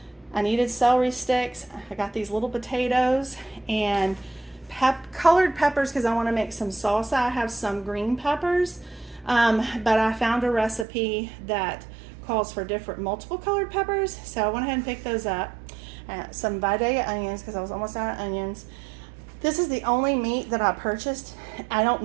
I needed celery sticks. I got these little potatoes and colored peppers because I want to make some salsa. I have some green peppers, but I found a recipe that calls for multiple colored peppers, so I went ahead and picked those up. Some Vidalia onions because I was almost out of onions. This is the only meat that I purchased. I don't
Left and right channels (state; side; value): drops out; left; at 10.9 s